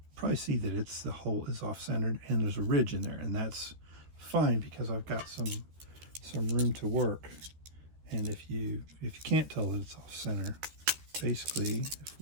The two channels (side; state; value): left; late; 13 ms